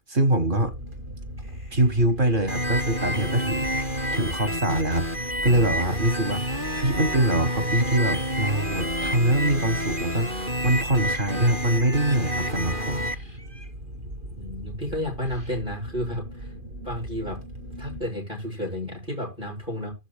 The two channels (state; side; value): late; left; 2.4 ms